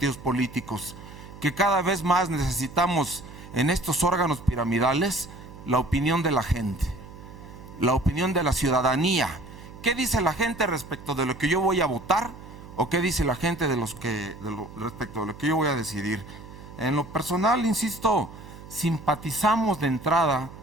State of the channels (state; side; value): noise; right; hum, 16 dB below the sound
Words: políticos? Que cada vez más necesitamos en estos órganos piramidales la opinión de la gente, la opinión de la ciudadanía. ¿Qué dice la gente respecto de lo que yo voy a votar? ¿O qué dice la gente respecto de lo que yo voy a decidir? En lo personal, insisto, simpatizamos de entrada